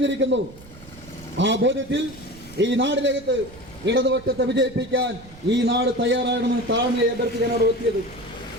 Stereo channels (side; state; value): right; noise; rumble, 20 dB below the sound